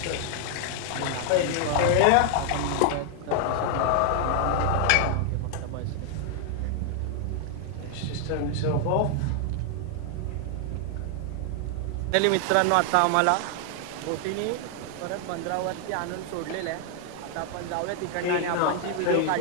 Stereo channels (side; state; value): both; different; correlation 0.00